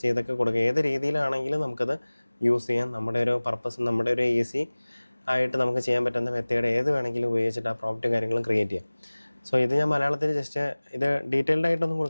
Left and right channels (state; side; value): inverted; both; correlation -1.00